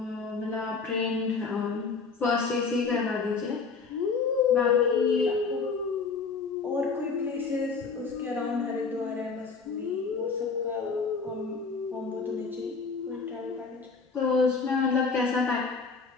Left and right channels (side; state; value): right; quieter; 4.8 dB